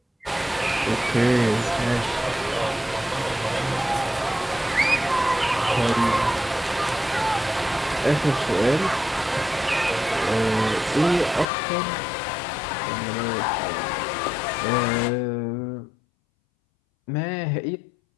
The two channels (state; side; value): drops out; right; at 11.5 s